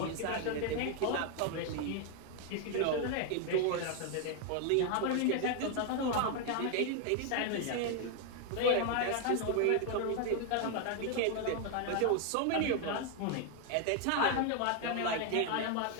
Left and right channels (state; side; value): different; both; correlation 0.01